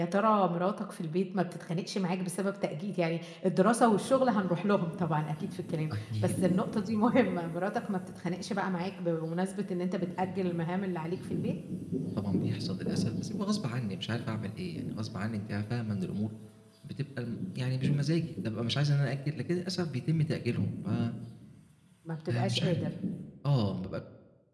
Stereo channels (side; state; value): both; identical; correlation 1.00